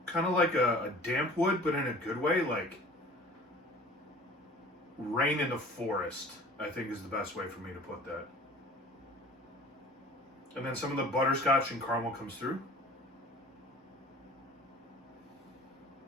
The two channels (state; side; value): normal; both; correlation 0.45